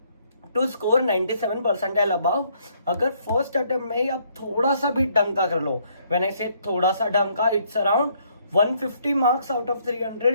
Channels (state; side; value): inverted; both; correlation -0.68